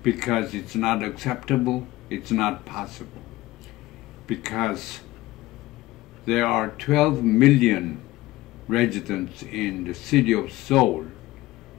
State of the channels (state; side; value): quieter; right; 17.8 dB